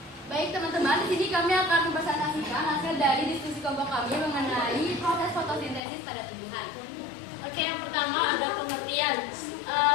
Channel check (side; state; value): right; drops out; at 5.8 s